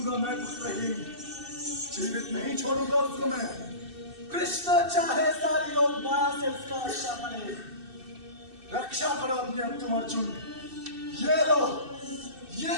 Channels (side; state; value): left; late; 2.6 ms